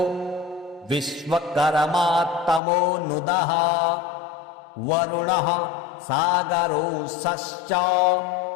विश्वकर्मा तमोनुदः वरुणः सागरोऽसश्च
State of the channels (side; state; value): right; drops out; at 2.6 s